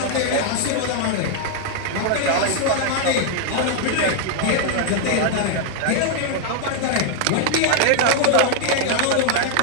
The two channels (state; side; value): different; both; correlation 0.00